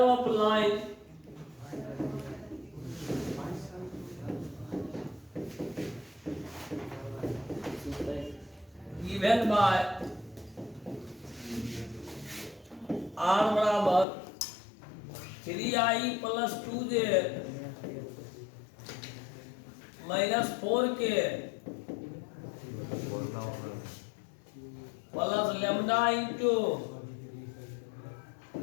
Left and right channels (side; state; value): right; drops out; at 14.1 s